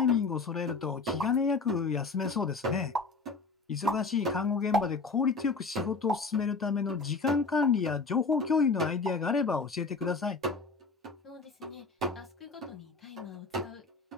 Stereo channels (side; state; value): right; quieter; 4.1 dB